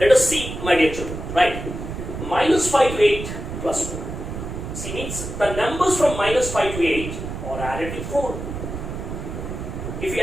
us see, my dear children, right? Minus 5 to 8 plus 4. See, means the numbers from minus 5 to 8 are added with 4. If you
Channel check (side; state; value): right; noise; rumble, 7 dB below the sound